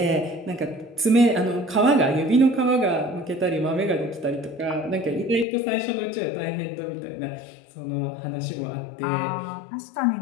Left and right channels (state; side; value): drops out; right; at 5.5 s